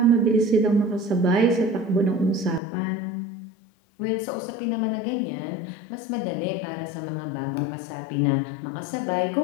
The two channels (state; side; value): drops out; right; at 2.6 s